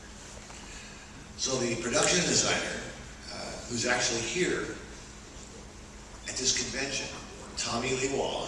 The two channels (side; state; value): both; identical; correlation 1.00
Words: So the production designer, who's actually here at this convention, Tommy Lee